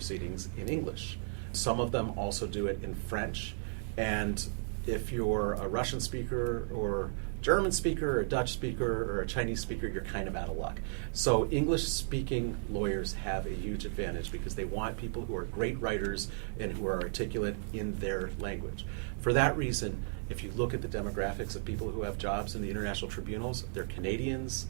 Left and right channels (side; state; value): left; silent; 55 dB below the other